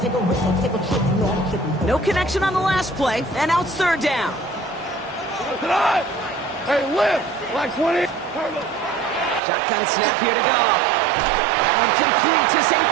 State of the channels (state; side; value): drops out; left; at 9.4 s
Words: No connection on the last play, and now it's third down. Hey, lift! Like 20. Shotgun snap here to go. That one complete to St.